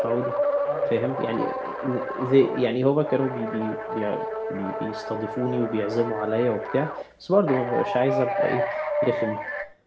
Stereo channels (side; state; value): both; identical; correlation 1.00